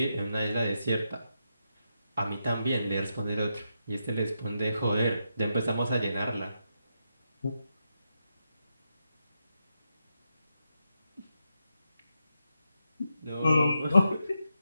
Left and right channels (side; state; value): both; inverted; correlation -0.85